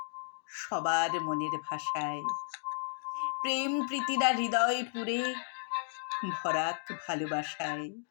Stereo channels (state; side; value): silent; right; digital silence